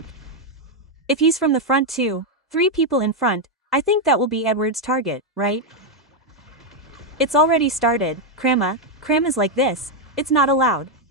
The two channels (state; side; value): normal; both; correlation 0.02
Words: If he's from the front too, 3 people in front, I think that will be Edward's target, right? It's already started. Cram is like this, it's not allowed,